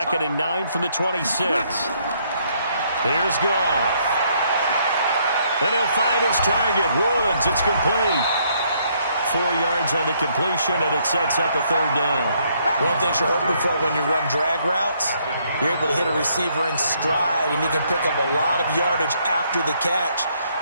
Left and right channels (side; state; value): both; inverted; correlation -0.70